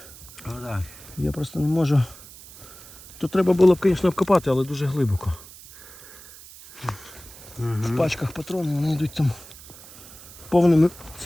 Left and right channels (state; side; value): noise; right; hiss, 18 dB below the sound